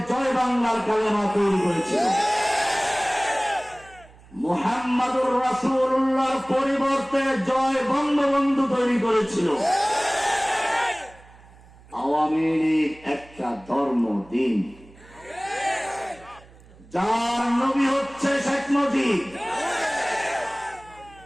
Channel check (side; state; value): right; noise; hum, 24 dB below the sound